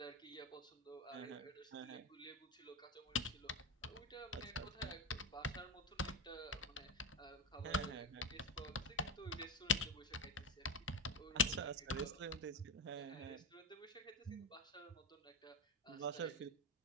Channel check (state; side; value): normal; both; correlation 0.13